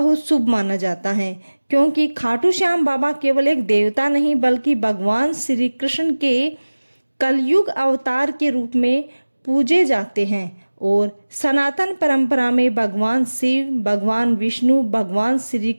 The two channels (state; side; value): inverted; both; correlation -1.00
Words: शुभ माना जाता है, क्योंकि खाटू श्याम बाबा केवल एक देवता नहीं बल्कि भगवान श्री कृष्ण के कलयुग अवतार के रूप में पूजे जाते हैं। और सनातन परंपरा में भगवान शिव, भगवान विष्णु, भगवान श्री